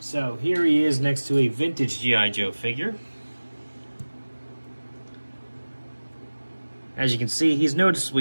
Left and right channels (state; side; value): inverted; both; correlation -1.00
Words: here he is next to a vintage G.I. Joe figure. As you can see, he's